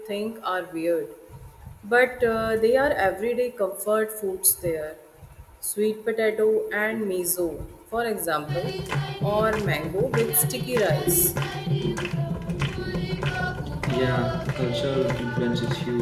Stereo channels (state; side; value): identical; both; correlation 1.00